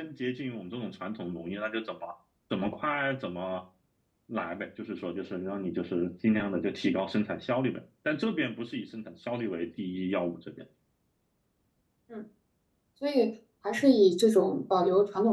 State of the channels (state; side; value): identical; both; correlation 1.00